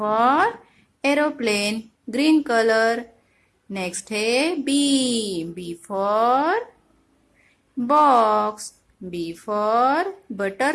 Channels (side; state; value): both; identical; correlation 1.00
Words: aeroplane, green colour. Next है B for box, B for